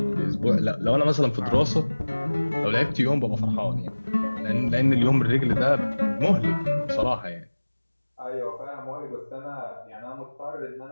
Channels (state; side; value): inverted; both; correlation -1.00